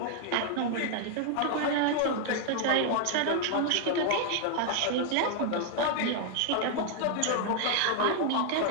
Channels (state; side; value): different; both; correlation 0.00